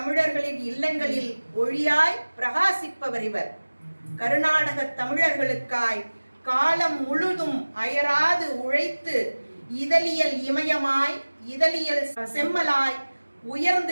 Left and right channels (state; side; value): inverted; both; correlation -1.00